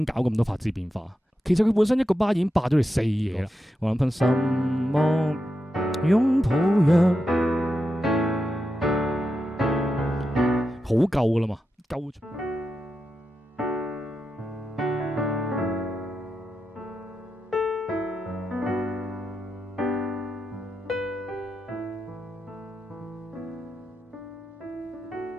搞咁多拍子變化。其實佢本身一個巴已經霸咗你4嘢啦。我諗噴什麼擁抱若好夠噶啦嘛，夠。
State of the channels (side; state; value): both; normal; correlation 0.88